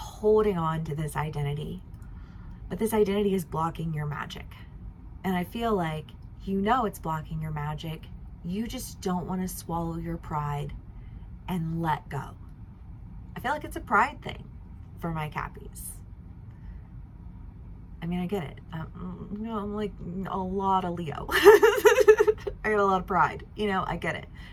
on to this identity, but this identity is blocking your magic. And I feel like, you know, it's blocking your magic. You just don't want to swallow your pride and let go. I feel like it's a pride thing for my Cappies. I mean, I get it. You know, I'm like a lot of Leo. I got a lot of pride. You know, I get it.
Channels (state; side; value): identical; both; correlation 1.00